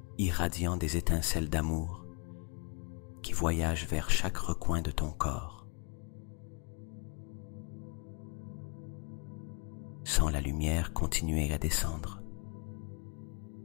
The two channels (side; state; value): right; quieter; 35.0 dB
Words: irradiant des étincelles d'amour qui voyagent vers chaque recoin de ton corps. Sens la lumière continuer à descendre,